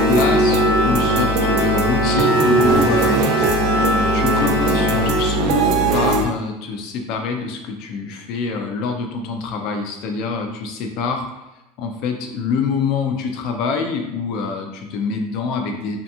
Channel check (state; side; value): normal; both; correlation 0.36